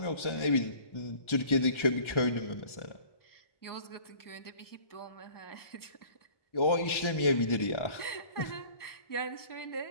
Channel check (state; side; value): late; right; 1.4 ms